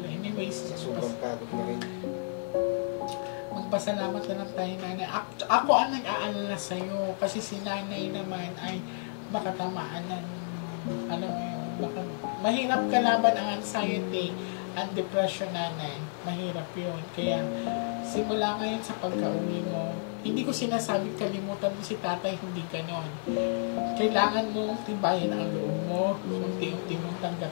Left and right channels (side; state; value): right; silent; 57 dB below the other